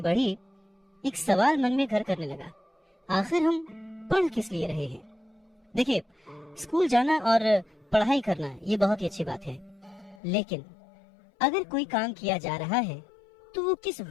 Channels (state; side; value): drops out; right; at 10.2 s